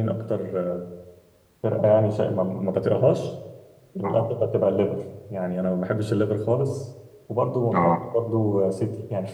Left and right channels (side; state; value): both; identical; correlation 1.00